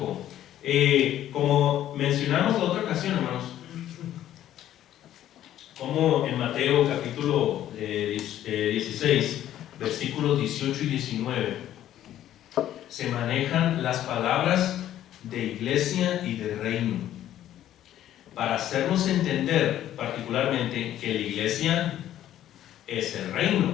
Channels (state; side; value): quieter; right; 12.1 dB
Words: Como mencionamos la otra ocasión, hermanos, como en Mateo capítulo 16, versículos 18 y 19, se manejan las palabras de iglesia y de reino, para hacernos entender particularmente que la iglesia es el